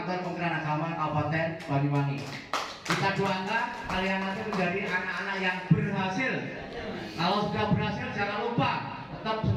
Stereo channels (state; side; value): identical; both; correlation 1.00